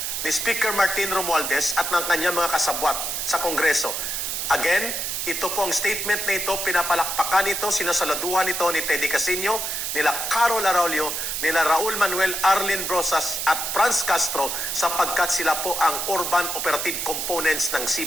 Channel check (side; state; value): right; noise; hiss, 2 dB below the sound